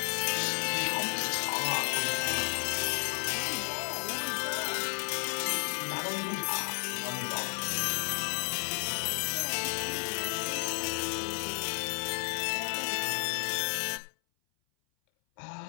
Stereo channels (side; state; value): right; silent; 56 dB below the other